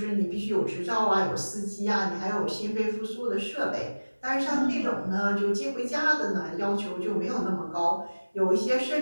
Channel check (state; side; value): inverted; both; correlation -1.00